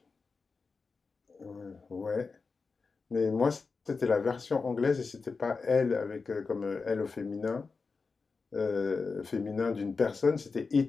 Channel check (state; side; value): quieter; right; 4.5 dB